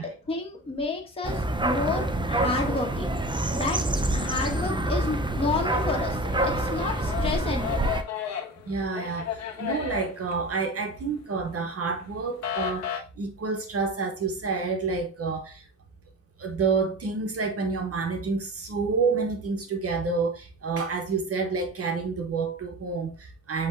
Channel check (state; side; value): normal; both; correlation 0.32